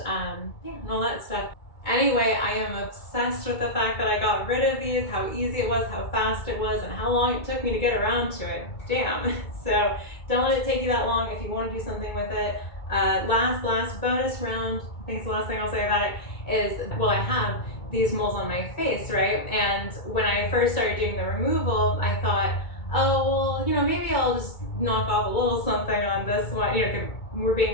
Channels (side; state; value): right; late; 2.2 ms